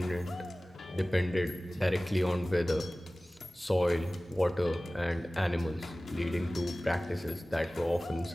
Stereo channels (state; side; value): normal; both; correlation 0.98